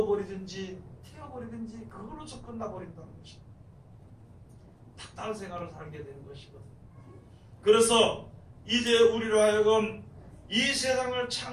태워버리든지 그걸로서 끝나버린다는 것입니다. 다른 생활을 살게 되는 것이거든요. 그래서 이제 우리로 하여금 이 세상을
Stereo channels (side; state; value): both; identical; correlation 1.00